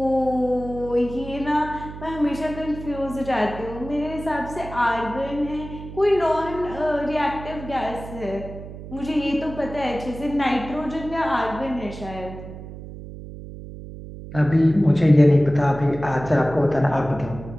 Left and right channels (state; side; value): noise; right; hum, 12 dB below the sound